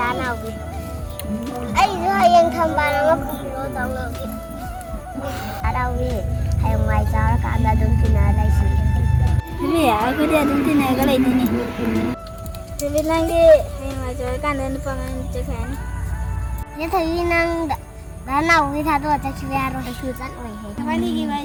Danawi. Ai yang thambara ma kulo tawlogi. Danawi hay mai jar ka da dun tina lai si. Vì aku dia dun tina ka lai tini. Vì lagi hay mai jar ka dan pangan cekan. Ye thai nang Danawi tha do ta chwe aro ta chu chat oi he. Apa ni gimana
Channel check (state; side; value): identical; both; correlation 1.00